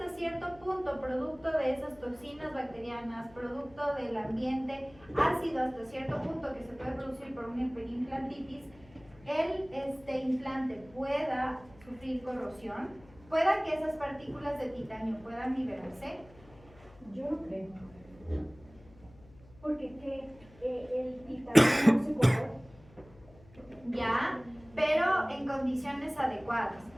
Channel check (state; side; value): noise; left; hum, 24 dB below the sound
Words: cierto punto, producto de esas toxinas bacterianas, producto del ambiente ácido hasta cierto punto que se puede producir por una hiperimplantitis, el implante pueda sufrir corrosión? ¿Pueda que esas partículas de titanio puedan liberarse? Yo no creo. Porque el titanio no se corrompe. Ya, pero en condiciones adecuadas.